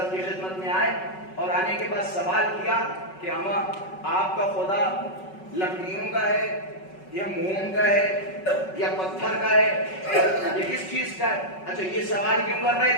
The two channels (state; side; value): late; right; 5.4 ms